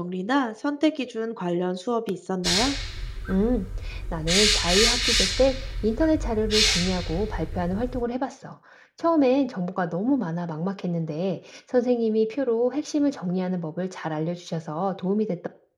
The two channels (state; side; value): identical; both; correlation 1.00